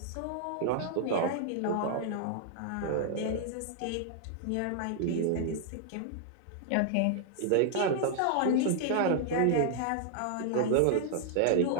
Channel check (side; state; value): both; different; correlation -0.01